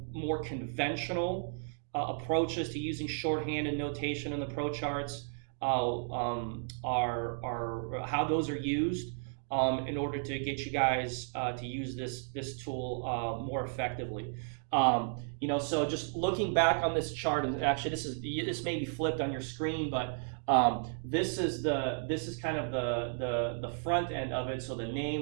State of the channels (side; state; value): left; silent; digital silence